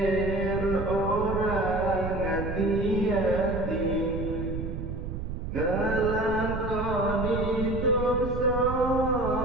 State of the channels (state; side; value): noise; right; rumble, 5 dB below the sound